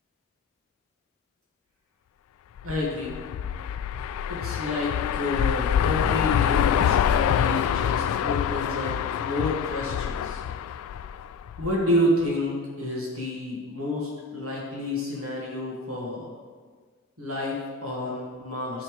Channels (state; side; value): quieter; right; 4.9 dB